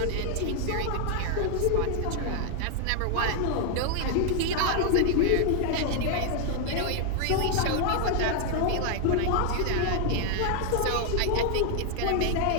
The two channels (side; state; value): both; different; correlation 0.00